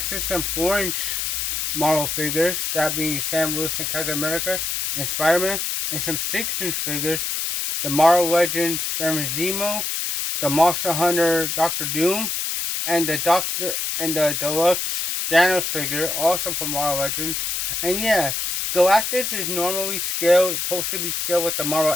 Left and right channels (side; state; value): left; noise; hiss, 1 dB below the sound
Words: to some 4-inch Marvel figures, that being Sam Wilson, Captain America, and Spider-Man, and some 6-inch figures, the Marvel Legends Fermazimo, the Monster Hunter Doctor Doom, and the deluxe Thanos figure, also from Marvel Legends. And yeah, Galactus is normally supposed to be scaled with the